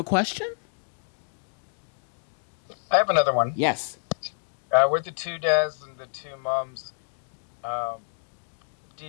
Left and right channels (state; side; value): silent; right; digital silence